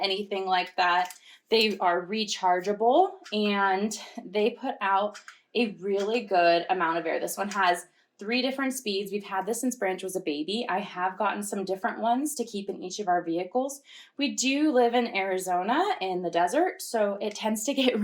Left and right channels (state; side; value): identical; both; correlation 1.00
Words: like that. They are rechargeable, and they put out a really good amount of air. This one has 3 different speeds. We've had this since Branch was a baby. I have gotten some different ones to keep in each of our vehicles. We do live in Arizona in the desert, so it tends to get